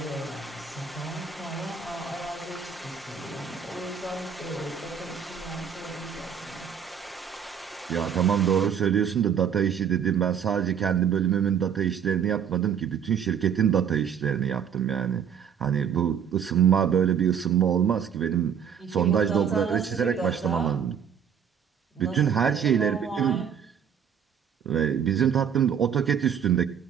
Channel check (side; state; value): left; quieter; 7.9 dB